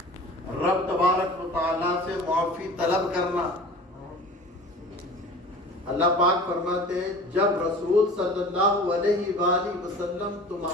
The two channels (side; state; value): both; normal; correlation 0.41